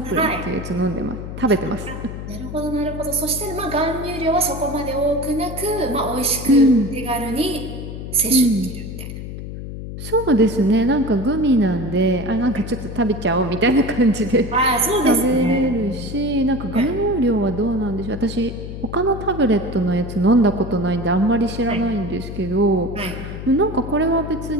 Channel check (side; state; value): left; noise; hum, 9 dB below the sound